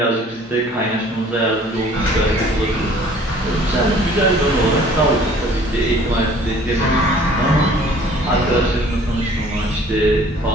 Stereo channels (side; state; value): both; normal; correlation 0.53